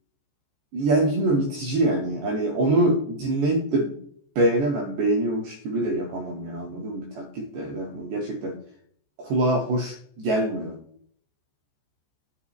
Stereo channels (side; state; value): left; late; 14 ms